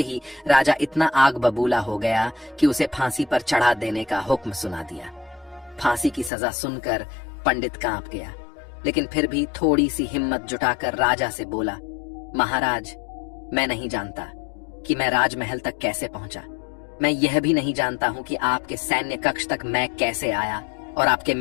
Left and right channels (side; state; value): right; drops out; at 6.3 s